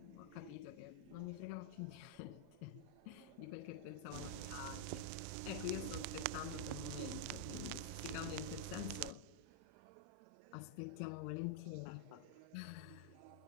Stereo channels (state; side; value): different; both; correlation -0.01